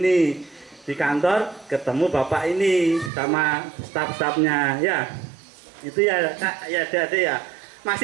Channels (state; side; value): drops out; left; at 3.1 s